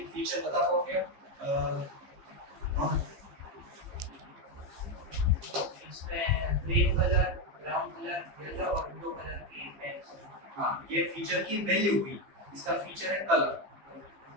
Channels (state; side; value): late; left; 15 ms